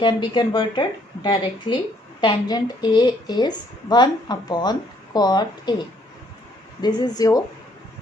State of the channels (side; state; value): both; normal; correlation 0.66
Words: be converted directly. Tangent A is 1 upon cot A. This is your